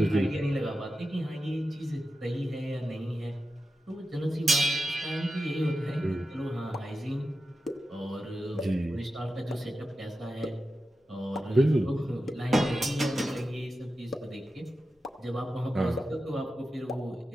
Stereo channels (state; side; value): normal; both; correlation 0.91